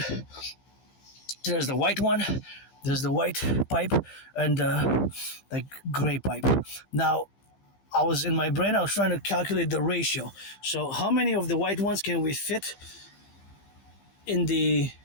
there's the white one, there's the white pipe, and gray pipe. Now, I was trying to calculate the ratio. So how many of the white ones can we fit in the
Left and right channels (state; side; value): late; right; 15 ms